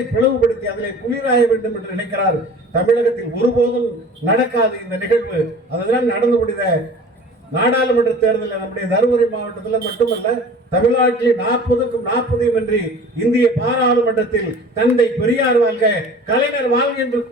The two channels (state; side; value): normal; both; correlation 0.43